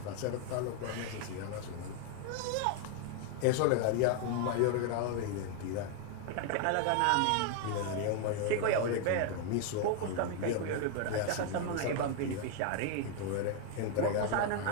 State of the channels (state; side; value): different; both; correlation 0.00